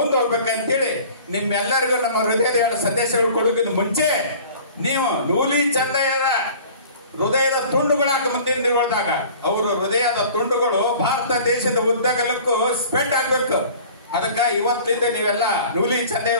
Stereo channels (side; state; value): both; inverted; correlation -0.46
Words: ಹೋಗ್ಬೇಕಂತೇಳಿ ನಿಮ್ಮೆಲ್ಲರಿಗೂ ನಮ್ಮ ಹೃದಯದ ಸಂದೇಶಗಳು ಕೊಡೋಕ್ಕಿಂತ ಮುಂಚೆ ನೀವು ನೂಲಿ ಚಂದಯ್ಯರ ಹೃದಯದ ತುಂಡುಗಳಾಗ ಮುಂದಿನ ದಿನಗಳದಾಗ ಅವರು ಹೃದಯದ ತುಂಡುಗಳು ಭಾರತ ದೇಶದ ಉದ್ದಗಲಕ್ಕೂ ಸ್ಪ್ರೆಡ್ ಆಗ್ಬೇಕು. ಅದಕ್ಕ ಇವತ್ತಿಂದ ನೀವೆಲ್ಲ ನೂಲಿ ಚಂದೆಯ